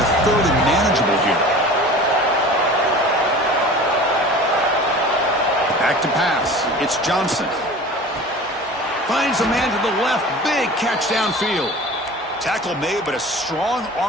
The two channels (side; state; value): both; normal; correlation 0.39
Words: a 3rd and manageable here? Back to pass. It's Johnson. Finds a man to the left. Big catch downfield. Tackle made, but a strong